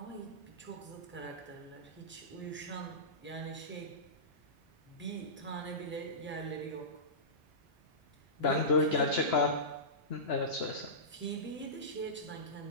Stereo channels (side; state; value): both; normal; correlation -0.19